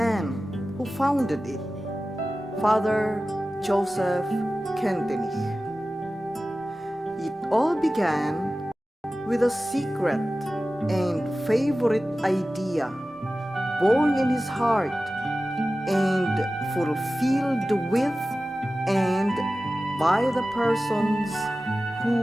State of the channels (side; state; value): both; normal; correlation 0.95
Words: who founded it, Father Joseph Kentenich. It all began with a secret and favorite idea born in his heart and fulfilled with and by the persons